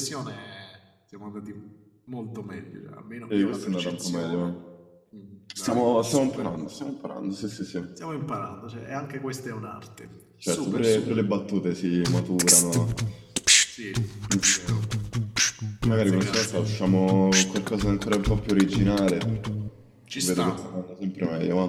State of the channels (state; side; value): identical; both; correlation 1.00